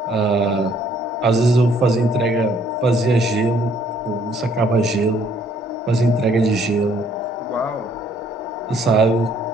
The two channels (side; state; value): both; normal; correlation 0.64